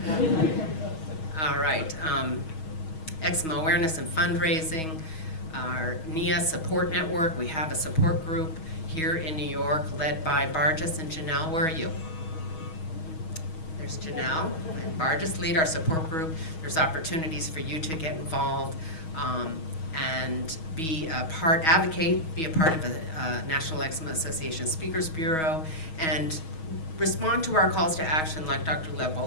All right. Eczema awareness and fundraising. Our NIA support network. We have a support group here in New York led by Barges and Janelle. Where are you? There's Janelle and Barges lead our support group. There's opportunities for you to get involved and be a part, advocate, be a part of the National Eczema Association Speakers Bureau, and respond to our calls to action like Dr.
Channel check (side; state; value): right; late; 6.3 ms